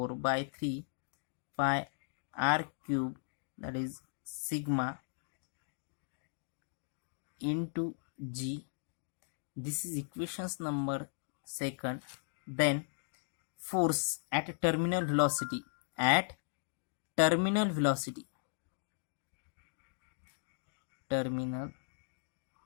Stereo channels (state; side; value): silent; right; digital silence